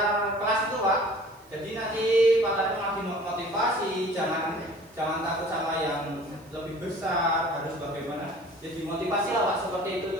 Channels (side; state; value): right; noise; hiss, 29 dB below the sound